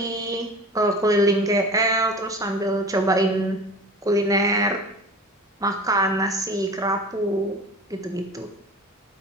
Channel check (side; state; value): both; normal; correlation 0.37